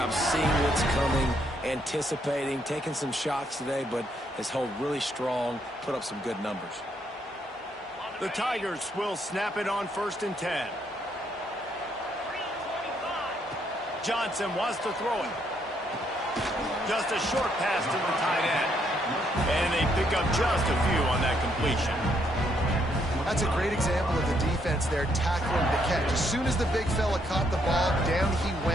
seeing what's coming, anticipating, taking some shots today, but has held really strong, put up some good numbers. The Tigers will snap it on 1st and 10. Johnson wants to throw it. Just a short pass to the tight end. And they pick up just a few on that completion. That's a great example of the defense there tackling the catch. As soon as the big fella caught the ball, down he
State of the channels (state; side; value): normal; both; correlation 0.73